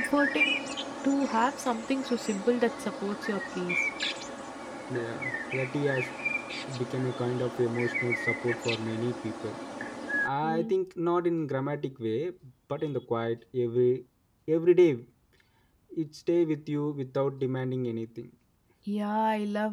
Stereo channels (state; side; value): identical; both; correlation 1.00